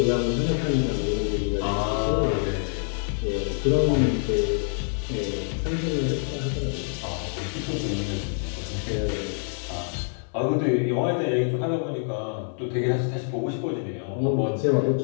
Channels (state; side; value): silent; right; 61 dB below the other